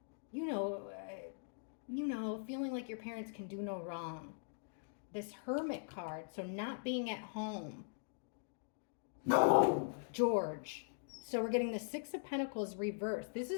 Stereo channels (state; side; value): silent; right; digital silence